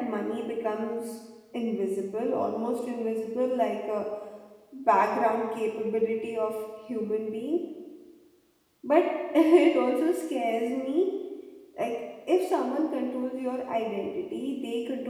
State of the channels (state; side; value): identical; both; correlation 1.00